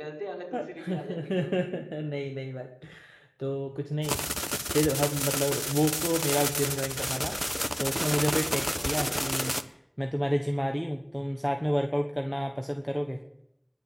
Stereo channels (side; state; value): both; identical; correlation 1.00